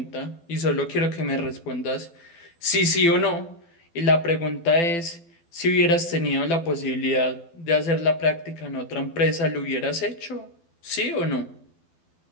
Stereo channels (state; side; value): late; right; 12 ms